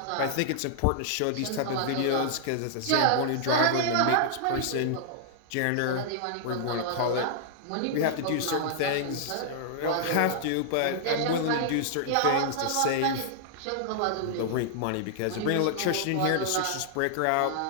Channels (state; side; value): different; both; correlation -0.01